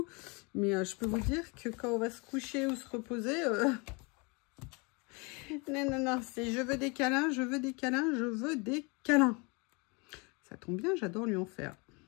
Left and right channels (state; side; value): quieter; right; 29.8 dB